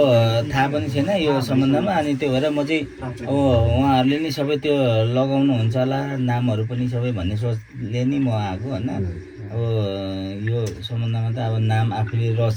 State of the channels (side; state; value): both; identical; correlation 1.00